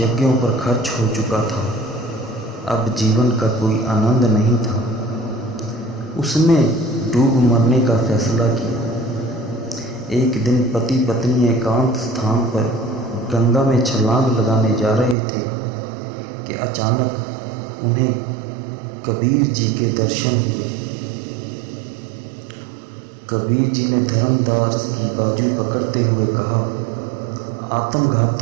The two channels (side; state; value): left; drops out; at 15.2 s